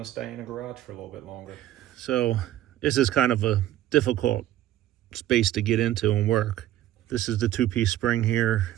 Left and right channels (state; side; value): quieter; left; 13.3 dB